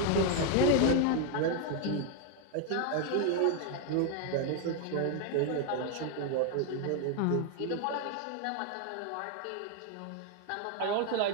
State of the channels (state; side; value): different; both; correlation 0.01